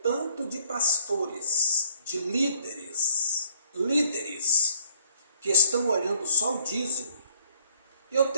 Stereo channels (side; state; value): both; inverted; correlation -0.63